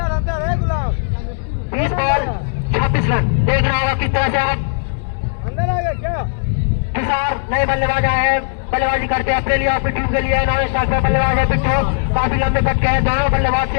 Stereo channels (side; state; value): right; silent; digital silence